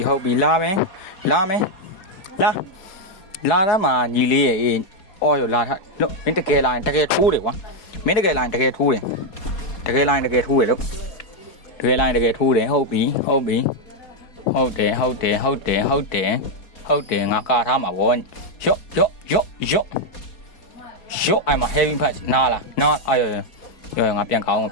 ဟုတ်ပြီလာမယ်လာတော့မှညီလေးရဲ့အော်ရောလာထားလို့မင်းတကယ်လာရင်တကယ်ထိုးတယ်ကွာမင်းတကယ်လာရင်တကယ်ထိုးတယ်လို့တကယ်လာရင်တကယ်ထိုးတယ်ဟုတ်ပြီဟုတ်တယ်ငါကာထားမှာဗောရော့အဲ့မှာ heavy punch နားအာရောငါပြန်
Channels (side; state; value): right; late; 4.6 ms